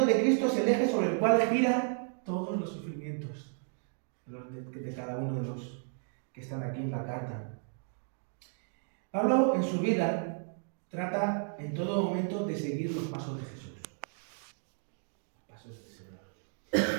de Cristo es el eje sobre el cual gira todos los sufrimientos de cada uno de los que están aquí en la carta. Pablo en su vida trata en todo momento de seguir los pasos de Jesús. Los pasos del Señor.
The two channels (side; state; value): left; silent; 56 dB below the other